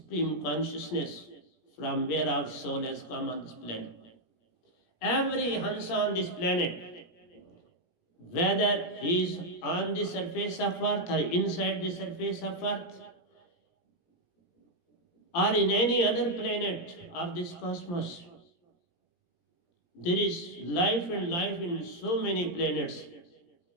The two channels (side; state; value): right; late; 17 ms